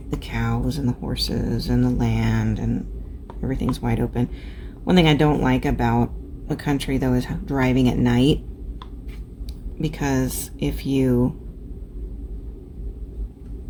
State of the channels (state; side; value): identical; both; correlation 1.00